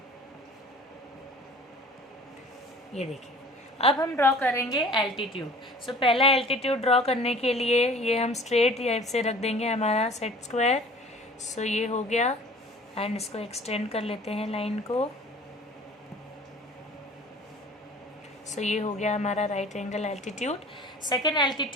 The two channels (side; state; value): both; normal; correlation 0.47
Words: ये देखिए अब हम ड्रॉ करेंगे एल्टीट्यूड। पहला एल्टीट्यूड ड्रॉ करने के लिए ये हम स्ट्रेट से रख देंगे हमारा सेट स्क्वायर। ये हो गया एंड इसको एक्सटेंड कर लेते हैं लाइन को। ये हो गया हमारा right angle altitude. Second